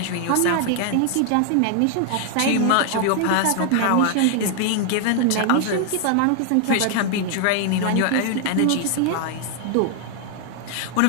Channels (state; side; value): different; both; correlation 0.00